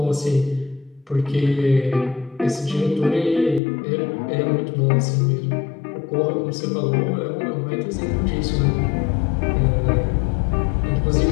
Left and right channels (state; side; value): drops out; right; at 3.6 s